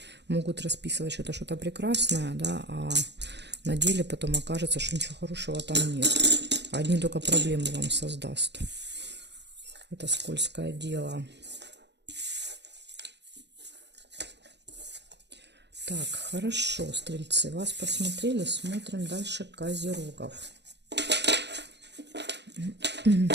могут расписывать что-то прекрасное, да, а на деле потом окажется, что ничего хорошего там нет. Одни только проблемы вам создаст. Это скользкое дело. Так, хорошо, стрельцы, вас посмотрели, смотрим дальше козерогов.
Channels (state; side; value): late; left; 0.50 ms